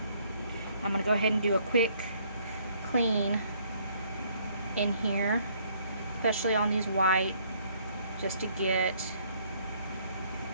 I'm going to go ahead and do a quick clean in here, especially on these white, just to get,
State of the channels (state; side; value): inverted; both; correlation -0.65